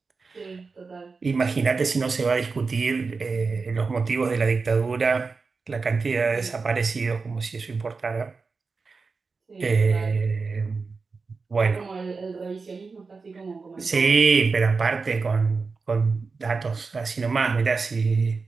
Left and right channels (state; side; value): quieter; left; 4.5 dB